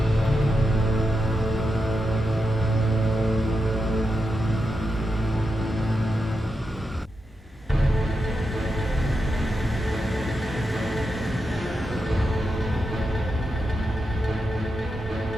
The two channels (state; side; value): normal; both; correlation 0.87